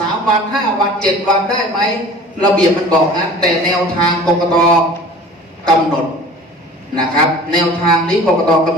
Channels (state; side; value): normal; both; correlation 0.43